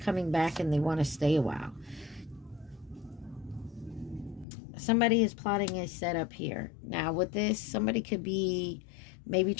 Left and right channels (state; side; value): drops out; right; at 4.5 s